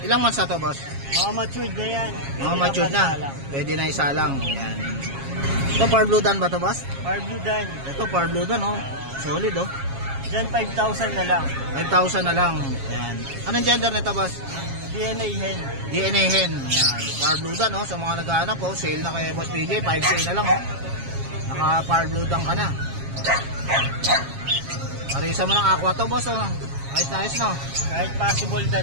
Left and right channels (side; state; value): left; late; 7.3 ms